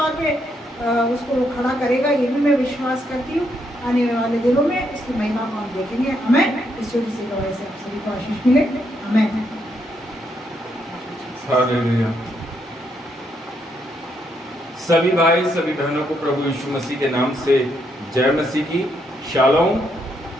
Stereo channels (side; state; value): both; normal; correlation 0.76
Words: पे उसको खड़ा करेगा। ये भी मैं विश्वास करती हूँ। आने वाले दिनों में इसकी महिमा को हम देखेंगे। हमें इस छोटी सी गवाही से आप सभी को आशीष मिले। हमें हालेलुया। सभी भाई, सभी बहनों को प्रभु यीशु मसीह के नाम से जय मसीह की। शालोम।